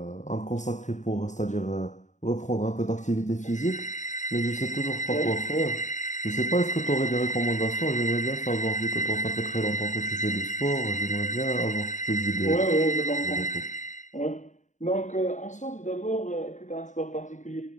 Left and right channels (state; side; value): late; right; 0.35 ms